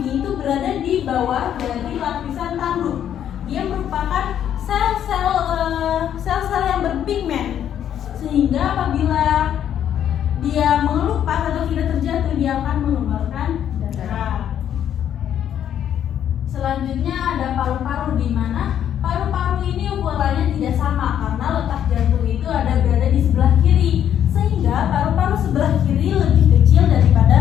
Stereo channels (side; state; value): right; quieter; 9.9 dB